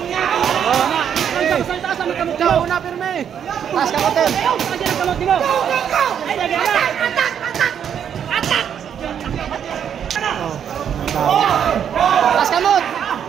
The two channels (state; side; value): quieter; left; 8.6 dB